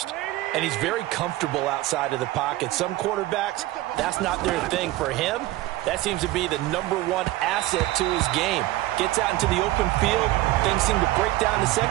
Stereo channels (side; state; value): left; quieter; 17.0 dB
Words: And he's very comfortable outside of the pocket. Some quarterbacks, that's not their thing. For him, that seems to be the #1 asset to his game. Gets out into the open field. Things seem to break down the